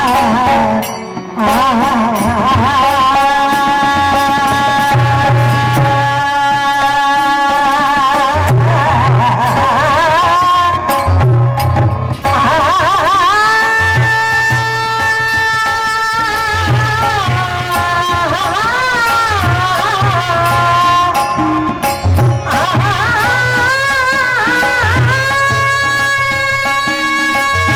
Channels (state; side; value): identical; both; correlation 1.00